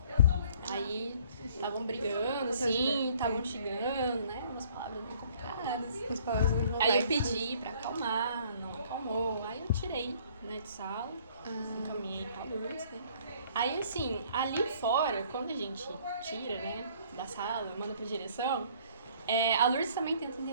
Aí estavam brigando, assim, estavam xingando, né? Umas palavras bem complicadas. As palavras bem Aí eu complexas. pedi pra acalmar, não acalmou. Aí eu tirei, né, de sala, encaminhei pra Lourdes, né? Aí, assim, ali fora, quando a gente tira, né, da sala, manda pra direção, a Lourdes também tenta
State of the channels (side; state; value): both; inverted; correlation -0.57